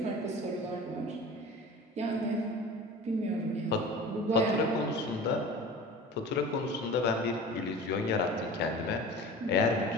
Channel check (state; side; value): normal; both; correlation 0.38